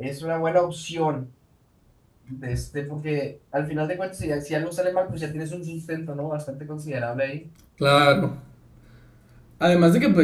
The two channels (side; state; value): both; identical; correlation 1.00